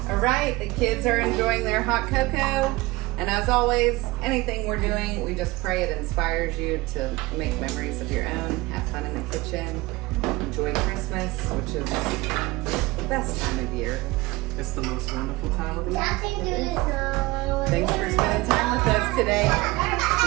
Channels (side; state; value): left; quieter; 21.3 dB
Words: right, the kids are enjoying their hot cocoa. And as always, anything we're doing, we just pray it inspires you to make memories of your own, have fun in the kitchen, enjoy Christmas, which is the best time of year. It's the most wonderful time of the year. Nothing to do. Thanks for spending time with us today.